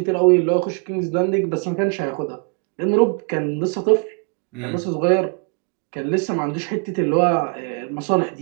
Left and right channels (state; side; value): quieter; left; 39.0 dB